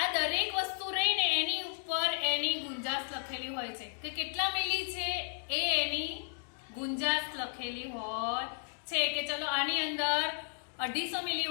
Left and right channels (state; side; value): silent; right; 55 dB below the other